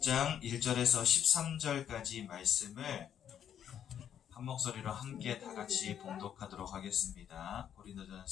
1절에서 13절까지 말씀을 한 목소리로 함께 다 같이 봉독하도록 하겠습니다.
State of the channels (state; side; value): quieter; right; 9.3 dB